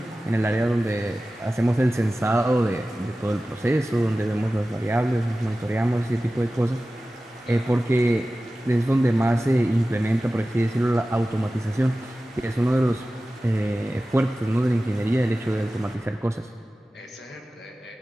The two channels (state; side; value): normal; both; correlation 0.96